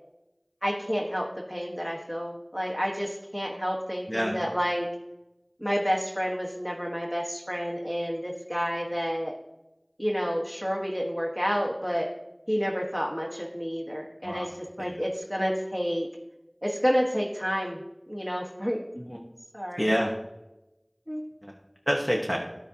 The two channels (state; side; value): identical; both; correlation 1.00